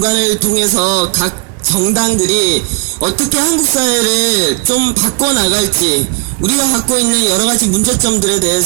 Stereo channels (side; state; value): left; quieter; 35.2 dB